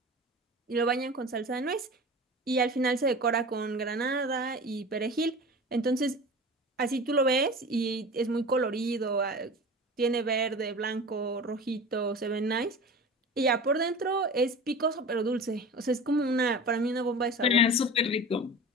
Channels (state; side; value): normal; both; correlation 0.34